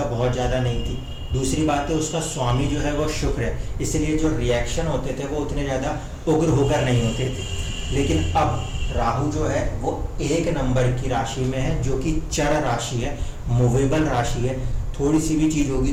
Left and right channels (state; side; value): identical; both; correlation 1.00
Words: बहुत ज़्यादा नहीं थी। दूसरी बात है, उसका स्वामी जो है वो शुक्र है, इसलिए जो रिएक्शन होते थे वो उतने ज़्यादा उग्र होकर नहीं होते थे। लेकिन अब राहु जो है वो 1 नंबर की राशि में है, जो कि चर राशि है, मूवेबल राशि है। थोड़ी सी भी चीज़